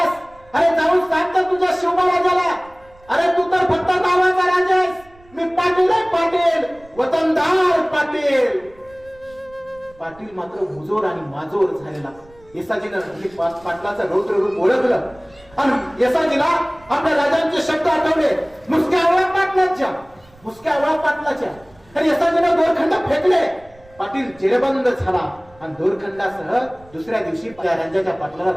अरे जाऊन सांग तर तुझ्या शिवबा राजाला. अरे तू तर फक्त नावाचा राजा आहेस, मी पाटील आहे पाटील, वतनदार पाटील. पाटील मात्र मुजोर आणि माजोर झालेला. येसाजीनं पाटलाचं रौद्र रूप ओळखलं आणि येसाजीला आपल्या राजांचे शब्द आठवले, मुसक्या आवळा पाटलाच्या, मुसक्या आवळा पाटलाच्या. आणि येसाजीनं दोरखंड फेकले. पाटील जेरबंद झाला आणि दोरखंडासह दुसऱ्या दिवशी त्या राजाच्या पाटलाला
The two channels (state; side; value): noise; right; rumble, 27 dB below the sound